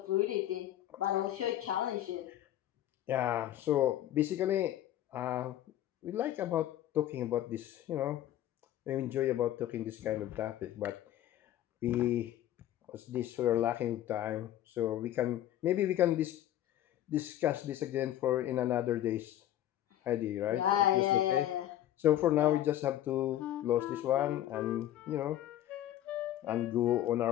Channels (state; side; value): quieter; right; 12.5 dB